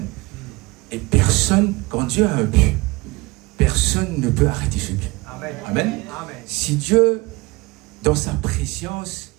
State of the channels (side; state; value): left; quieter; 23.1 dB